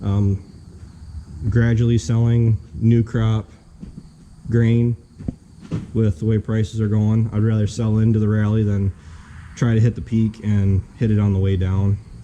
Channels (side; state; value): both; identical; correlation 1.00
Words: Gradually selling new crop grain with the way prices are going. I'd rather sell into the rally than try to hit the peak and hit it on the way down.